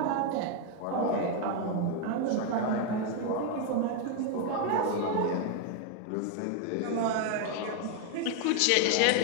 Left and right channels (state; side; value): different; both; correlation 0.01